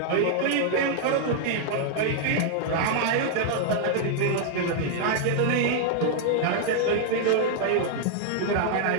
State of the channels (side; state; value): both; different; correlation 0.00